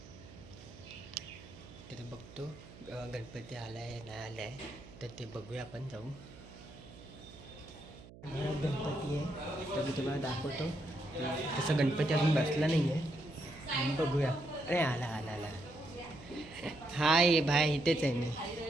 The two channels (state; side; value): noise; right; hum, 18 dB below the sound